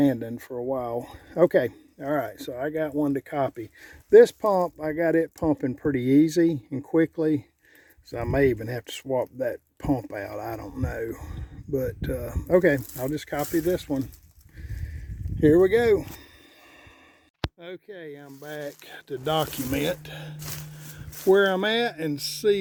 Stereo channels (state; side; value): identical; both; correlation 1.00